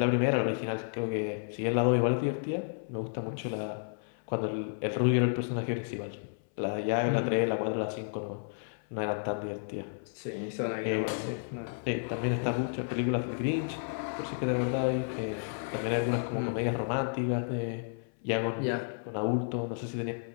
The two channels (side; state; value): right; silent; 57 dB below the other